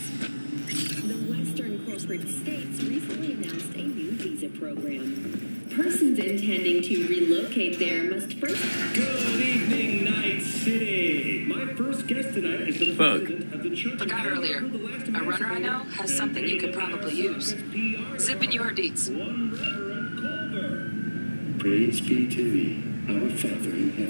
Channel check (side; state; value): both; inverted; correlation -1.00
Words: States recently announced a new visa program. Persons intending to relocate there must first... Good evening, Night City. My first guest tonight is the president of the Church. Forgot earlier. A runner I know has something you could probably use. Zip in your deets. One Reverend Culver. Praise be to thee, our Father in